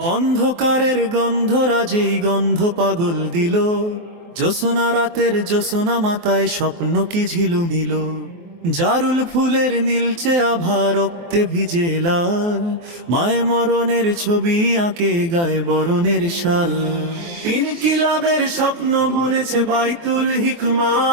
অন্ধকারের গন্ধরাজেই গন্ধ পাগল দিল, জ্যোৎস্না রাতের জ্যোৎস্না মাথায় স্বপ্ন কি ঝিলুমিল। জারুল ফুলের নীলচে আভা রক্তে ভিজে লাল, মায় মরণের ছবি আঁকে গায়ে বরণের শাল। ইনকিলাবের স্বপ্ন বুনেছে বাইতুল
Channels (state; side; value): late; left; 24 ms